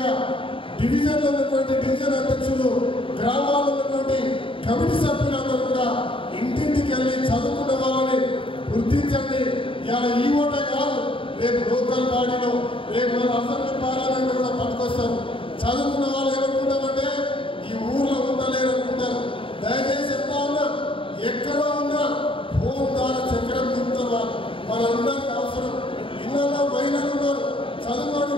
డివిజన్లో ఉన్నటువంటి డివిజన్ అధ్యక్షులు, గ్రామాల్లో ఉన్నటువంటి కమిటీ సభ్యులందరూ కూడా ఇంటింటికి వెళ్ళి చదువుకున్న వాళ్ళని గుర్తించండి. ఇలా ఈ ఓటే కాదు, రేపు లోకల్ బాడీలో, రేపు అసెంబ్లీ పార్లమెంట్ కూడా పట్టుకొస్తారు. చదువుకున్న వాళ్ళు ఏమనుకుంటామంటే ఈ ఊర్లో ఉండలేరు అనుకుంటారు. దయచేసి చెప్తా ఉన్నా, ఎక్కడో ఉన్నా ఫోన్ ద్వారా చక్రం తింటారు వాళ్ళు. మనందరికీ అవసరం. ఇళ్ళలో మహిళలు ఉన్నారు, చదువుకొని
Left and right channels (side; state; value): right; late; 0.25 ms